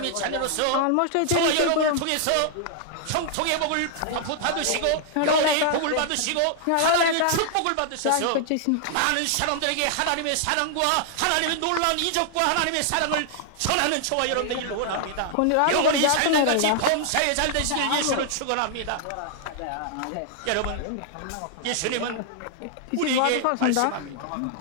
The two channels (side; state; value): both; different; correlation 0.00